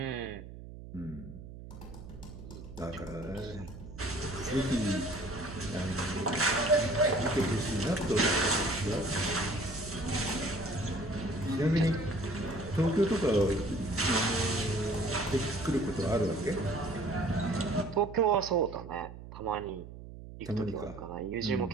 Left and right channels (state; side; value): noise; right; hum, 14 dB below the sound